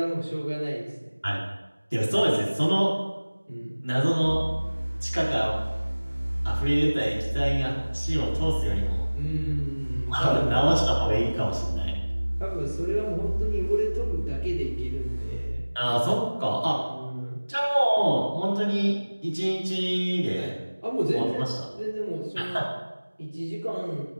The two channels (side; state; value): both; inverted; correlation -1.00